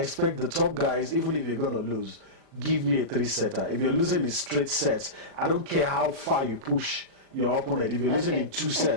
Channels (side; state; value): left; late; 37 ms